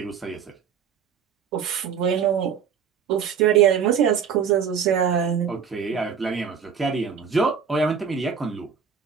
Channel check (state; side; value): quieter; left; 7.1 dB